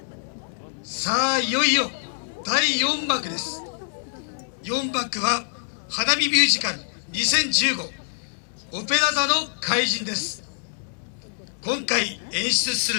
さあいよいよ第4幕です。4幕は花火ミュージカル2015オペラ座の怪人です。今回演出す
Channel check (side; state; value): right; silent; digital silence